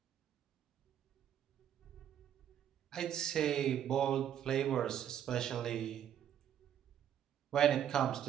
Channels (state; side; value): quieter; left; 10.0 dB